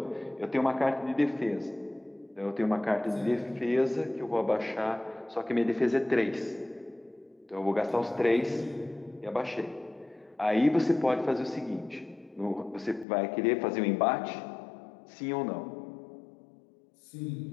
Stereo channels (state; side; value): drops out; right; at 13.1 s